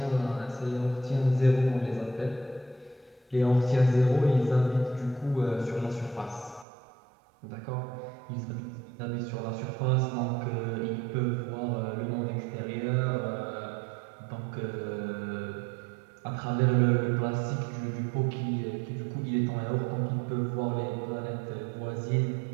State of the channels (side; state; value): left; drops out; at 6.7 s